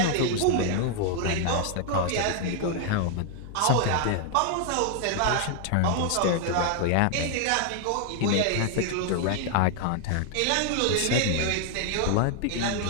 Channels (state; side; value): different; both; correlation 0.00